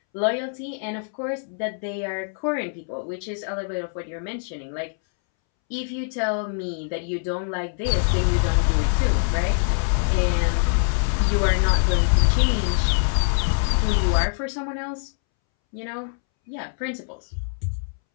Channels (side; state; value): right; silent; 63 dB below the other